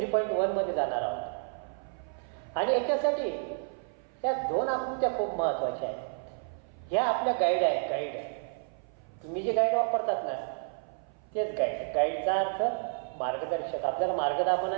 जाणार आहोत आणि याच्यासाठी ह्या दोन आकृत्या खूप महत्त्वाच्या आहेत. ह्या आपल्या गाईड आहेत. गाईड तुम्ही जे गाईड वापरतात ना तेच गाईड. गाईडचा अर्थ मार्गदर्शक, आपल्याला मार्ग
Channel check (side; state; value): left; silent; 55 dB below the other